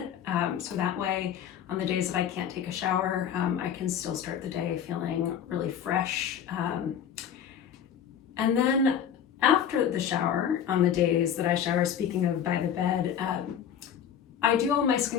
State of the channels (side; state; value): right; quieter; 8.8 dB